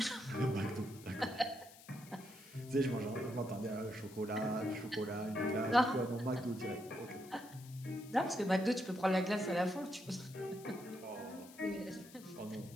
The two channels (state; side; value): noise; left; hiss, 20 dB below the sound